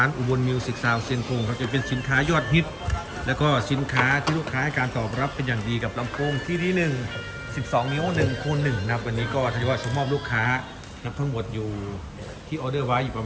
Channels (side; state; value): both; identical; correlation 1.00